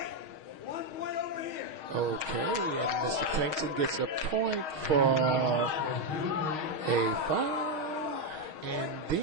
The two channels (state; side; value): late; left; 6.4 ms